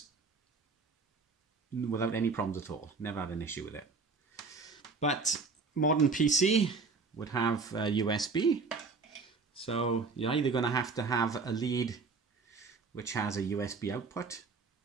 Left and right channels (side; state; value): left; quieter; 4.5 dB